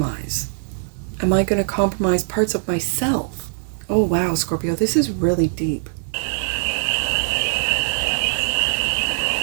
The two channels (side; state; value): left; silent; 59 dB below the other